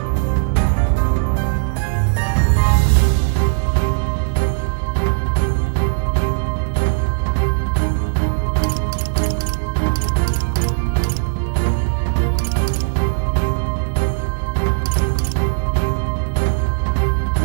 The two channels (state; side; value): silent; left; 59 dB below the other